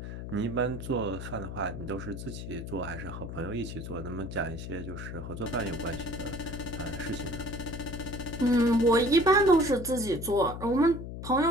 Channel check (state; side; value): noise; left; hum, 8 dB below the sound